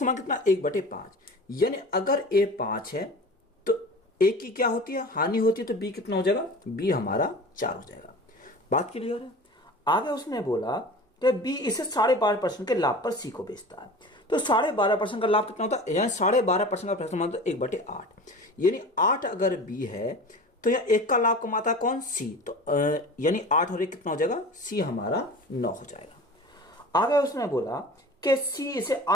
कितना? 1/5, यानी अगर ए 5 है तो ए की क्या होती है? हानि होती है, तो बी कितना हो जाएगा? बी हमारा 4 हो जाएगा। बात क्लियर है? आगे उसने बोला कि बी इसे 12.5% के लाभ पर सी को बेचता है, तो 12.5% का लाभ कितना होता है? यानी 12.5% का समान 1/8, यानी 8 अगर बी है तो यह 1 का लाभ कमाता है कौन? सी, तो यानी 8 और 1 कितना हो जाएगा? सी हमारा 9 हो जाएगा। आगे उसने बोला कि सी इसे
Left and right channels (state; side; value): normal; both; correlation 0.37